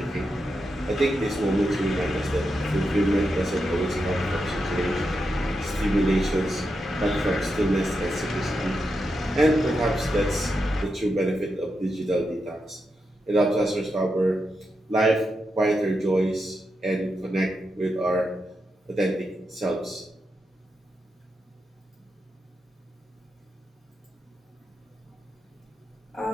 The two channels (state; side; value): normal; both; correlation 0.86